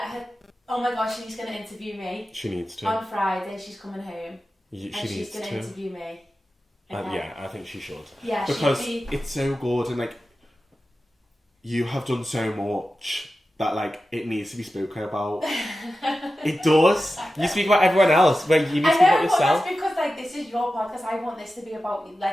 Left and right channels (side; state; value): both; normal; correlation 0.93